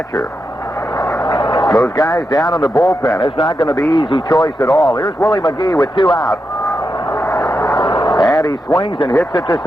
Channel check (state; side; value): normal; both; correlation 0.87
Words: Those guys down in the bullpen, it's not going to be easy choice at all. Here's Willie McGee with 2 out. And he swings and hits it to